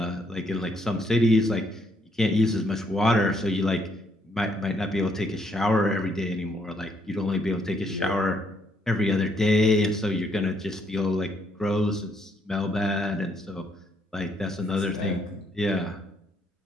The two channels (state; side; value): normal; both; correlation 0.71